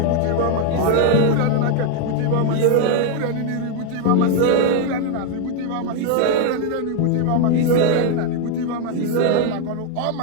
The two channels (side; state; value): both; different; correlation 0.00